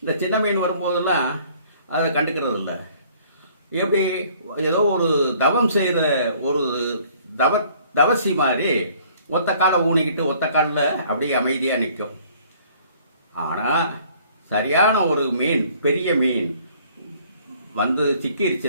இந்த சின்ன மீன் வரும்போதெல்லாம் அதை கண்டுக்கிறது இல்லை. எப்படி ஏதோ ஒரு தவம் செய்கிற ஒரு தவசி மாதிரி ஒத்த காலை ஊனிக்கிட்டு ஒத்த காலில் அப்படியே அமைதியாக நிற்கும். ஆனால் சரியான ஒரு மீன், பெரிய மீன் வந்து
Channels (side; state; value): both; inverted; correlation -0.57